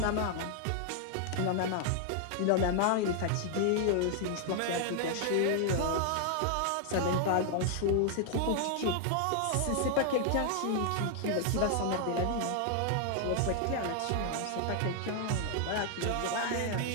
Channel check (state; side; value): different; both; correlation 0.00